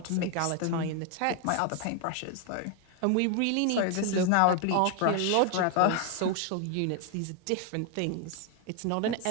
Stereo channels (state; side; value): different; both; correlation 0.01